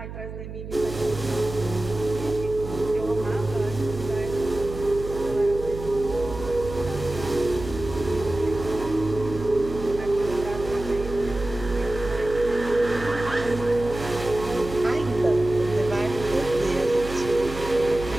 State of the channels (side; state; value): right; noise; hum, 10 dB below the sound